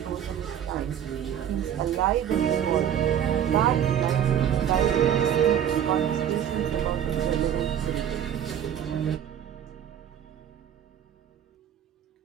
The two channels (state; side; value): quieter; left; 9.6 dB